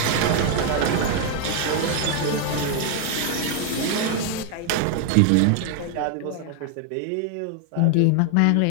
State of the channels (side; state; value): both; different; correlation 0.00